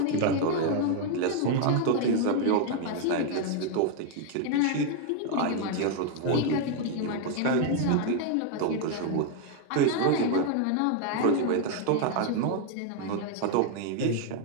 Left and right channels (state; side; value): different; both; correlation 0.00